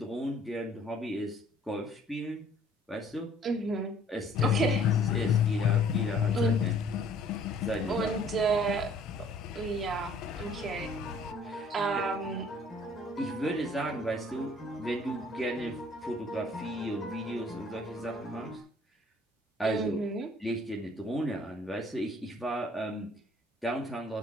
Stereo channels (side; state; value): both; normal; correlation 0.57